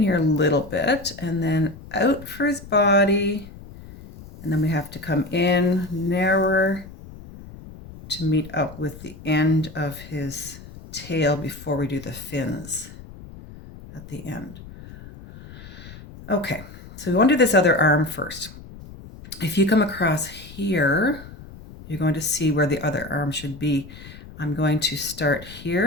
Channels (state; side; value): noise; left; rumble, 16 dB below the sound